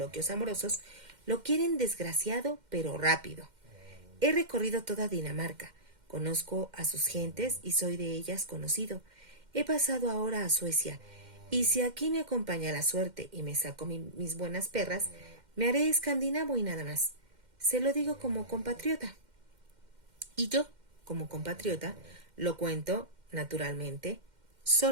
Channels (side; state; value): left; late; 2.1 ms